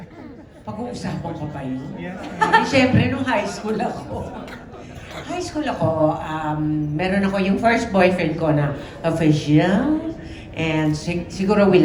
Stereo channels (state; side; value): identical; both; correlation 1.00